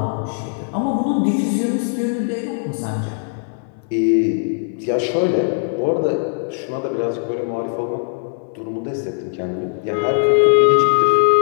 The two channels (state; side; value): silent; right; 66 dB below the other